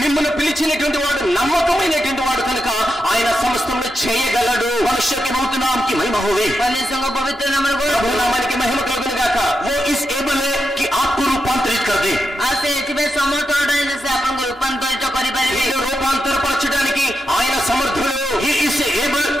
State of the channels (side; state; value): both; normal; correlation 0.86